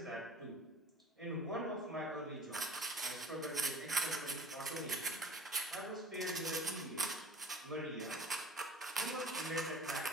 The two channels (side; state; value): both; normal; correlation 0.44